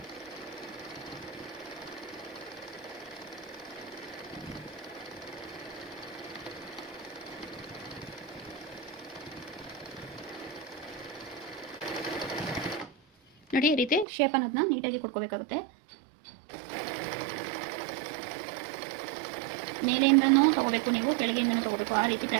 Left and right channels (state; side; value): drops out; left; at 14.1 s